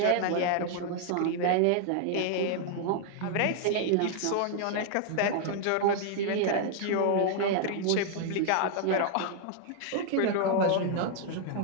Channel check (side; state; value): both; different; correlation 0.00